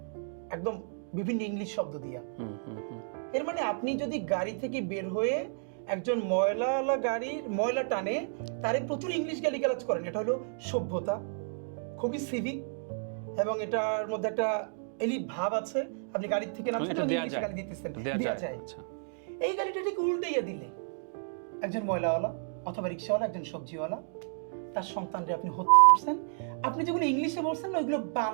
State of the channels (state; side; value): silent; left; digital silence